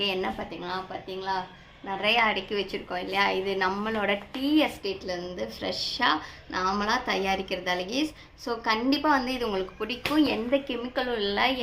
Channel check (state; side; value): identical; both; correlation 1.00